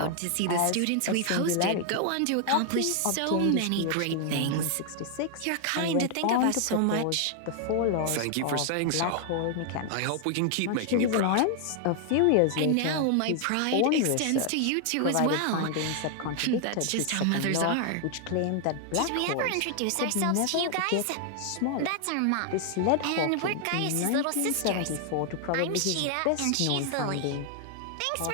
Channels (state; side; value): different; both; correlation 0.00